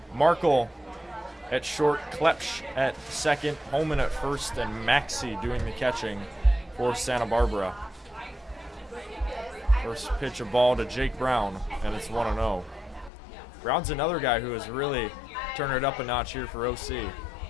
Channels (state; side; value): drops out; right; at 13.1 s